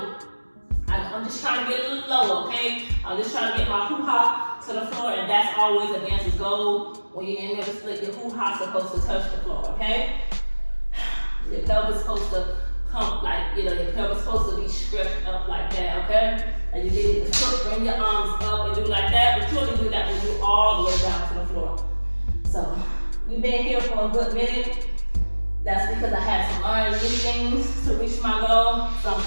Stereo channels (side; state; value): both; inverted; correlation -1.00